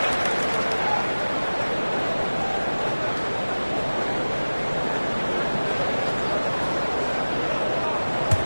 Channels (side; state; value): both; inverted; correlation -1.00